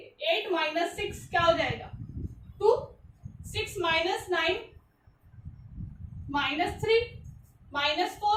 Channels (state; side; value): identical; both; correlation 1.00